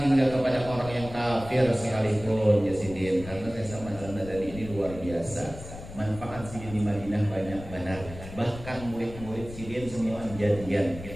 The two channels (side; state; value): left; noise; rumble, 13 dB below the sound